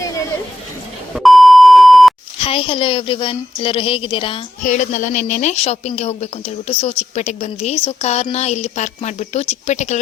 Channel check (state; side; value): normal; both; correlation 0.84